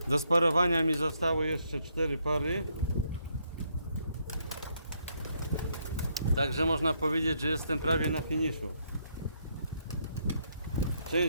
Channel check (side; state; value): both; inverted; correlation -0.74